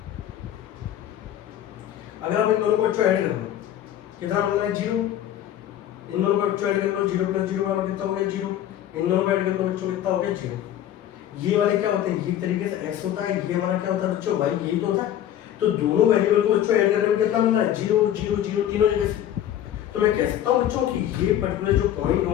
अगर आप इन दोनों को बच्चों ऐड कर दो, कितना बनना है, 0, इन दोनों को बच्चों ऐड कर लो, 0 + 0 बराबर कितना हो गया 0, इन दोनों को ऐड कर लो बच्चों कितना हो गया 0। ये वाले क्या होते हैं, ये तरीके से x होता है, ये हमारा क्या होता है बच्चों y, यही तो होता है। तो दोनों वेरिएबल को बच्चों ऐड करने में कितना मिल रहा है 0 0 0 तीनों जगह से। तो मैं कह सकता हूँ बच्चों कि ये पर्टिकुलर जो पॉइंट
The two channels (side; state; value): right; quieter; 11.3 dB